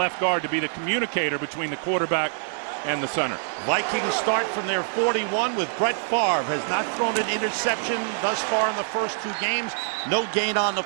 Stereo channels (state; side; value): silent; left; 56 dB below the other